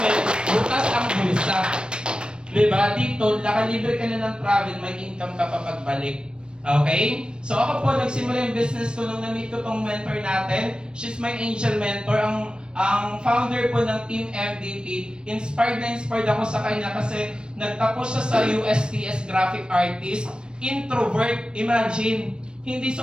bukas ang bulsa. Diba? Dito, nakalibre ka na ng travel, may income ka pa pagbalik. Okay? So ako po, nagsimula yung business ko nung na-meet ko tong mentor natin. She's my angel mentor. Ang founder po ng Team MVP. Inspired ako sa kanya kasi nagtapos siya sa USTS Graphic Artist. Introvert, imagine. Hindi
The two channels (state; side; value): late; left; 0.053 ms